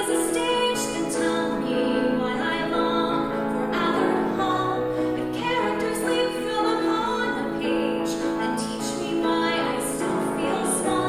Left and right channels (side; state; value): both; identical; correlation 1.00